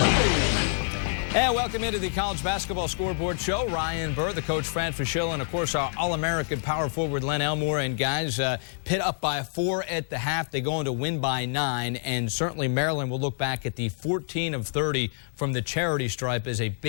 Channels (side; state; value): right; silent; digital silence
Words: And welcome into the College Basketball Scoreboard Show. Ryan Burr, the coach Fran Fischel, and of course our All-American power forward Len Elmore. And guys, Pitt up by 4 at the half. They go on to win by 9. And certainly Maryland will look back at the 14 of 30 from the charity stripe as a